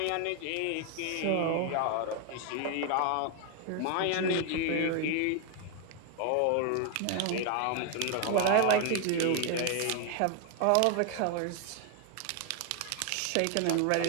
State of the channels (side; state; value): both; different; correlation 0.01